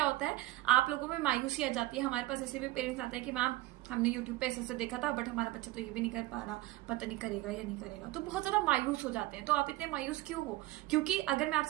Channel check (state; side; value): quieter; left; 18.0 dB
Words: होता है, आप लोगों में मायूसी आ जाती है। हमारे पास ऐसे भी पेरेंट्स आते हैं कि मैम हमने यूट्यूब पे ऐसे देखा था बट हमारा बच्चा तो ये भी नहीं कर पा रहा, पता नहीं करेगा या नहीं करेगा। तो बहुत ज्यादा मायूस हो जाते हैं। तो आप इतने मायूस क्यों हो? क्योंकि अगर मैं